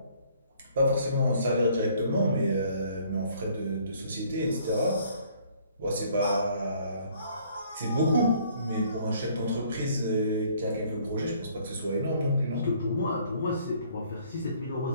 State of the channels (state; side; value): inverted; both; correlation -0.60